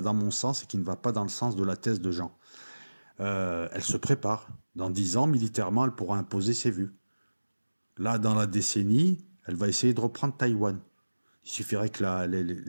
dans mon sens et qui ne va pas dans le sens de la thèse de Jean. Elle se prépare. Dans 10 ans, militairement, elle pourra imposer ses vues. Là, dans la décennie, elle va essayer de reprendre Taïwan. Il suffirait que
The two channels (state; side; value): inverted; both; correlation -1.00